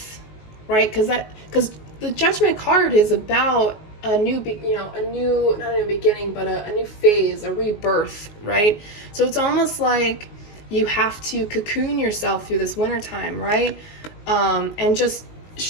right? Because the Judgment card is about a new, not a new beginning, but a new phase, a rebirth, right? So it's almost like you have to cocoon yourself through this wintertime, right? And just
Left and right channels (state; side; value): late; right; 19 ms